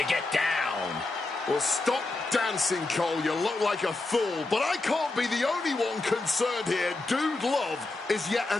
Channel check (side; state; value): right; quieter; 3.1 dB